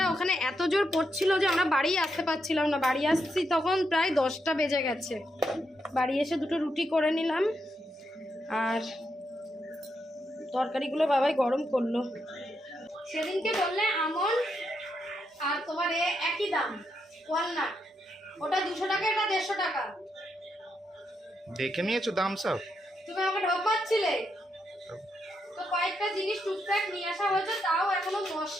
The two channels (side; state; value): both; normal; correlation 0.81